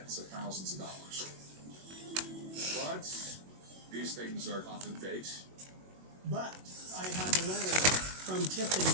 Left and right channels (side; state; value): left; late; 21 ms